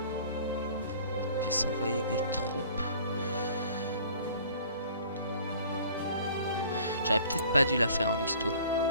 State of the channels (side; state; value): both; inverted; correlation -0.51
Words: Puis s'envoyer des troupes. J'aurais peut-être pas dû la faire en histo.